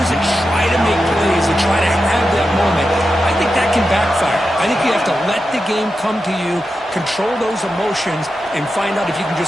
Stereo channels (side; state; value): both; normal; correlation 0.90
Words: that try to make plays, that try to have that moment, I think that can backfire. I think you have to let the game come to you, control those emotions, and find out if you can